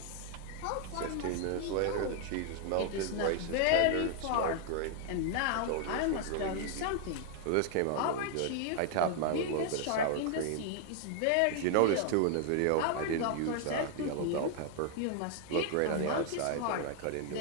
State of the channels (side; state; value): both; different; correlation 0.00